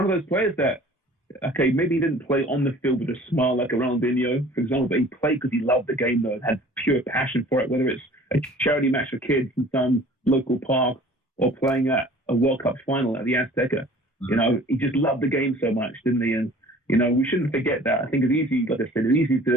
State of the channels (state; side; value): normal; both; correlation 0.48